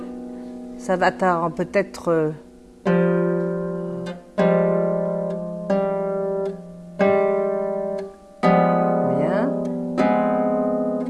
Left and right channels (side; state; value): both; identical; correlation 1.00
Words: Ça va peut-être... Bien.